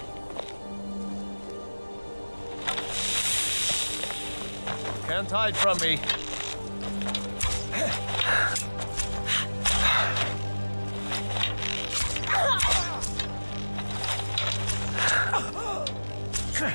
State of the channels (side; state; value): both; inverted; correlation -1.00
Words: Can't hide from me.